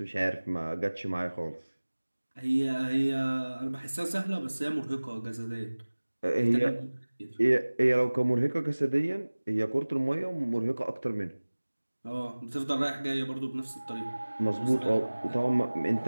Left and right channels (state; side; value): inverted; both; correlation -1.00